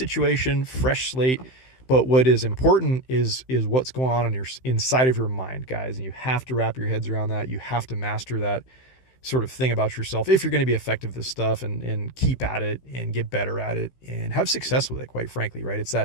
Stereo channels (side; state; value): right; late; 15 ms